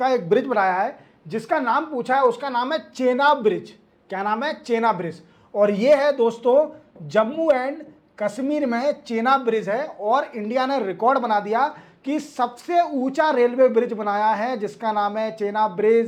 एक ब्रिज बनाया है जिसका नाम पूछा है, उसका नाम है चेनाब ब्रिज। क्या नाम है? चेनाब ब्रिज। और ये है दोस्तों जम्मू एंड कश्मीर में चेनाब ब्रिज है। और इंडिया ने रिकॉर्ड बना दिया कि सबसे ऊंचा रेलवे ब्रिज बनाया है जिसका नाम है चेनाब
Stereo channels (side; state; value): both; identical; correlation 1.00